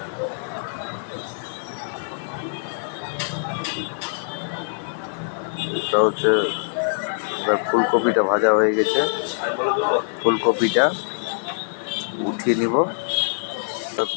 এটা হচ্ছে এবার ফুলকপিটা ভাজা হয়ে গেছে, ফুলকপিটা উঠিয়ে নিব।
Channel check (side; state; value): right; silent; digital silence